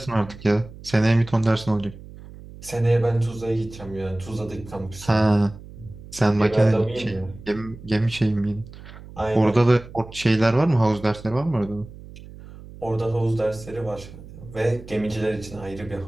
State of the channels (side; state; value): right; noise; hum, 17 dB below the sound